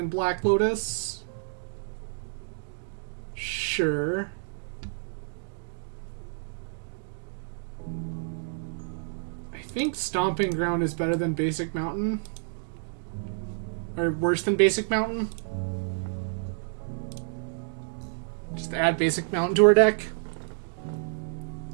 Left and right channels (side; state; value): left; silent; digital silence